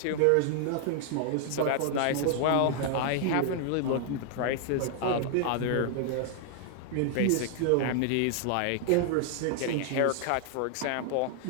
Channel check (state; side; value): different; both; correlation 0.00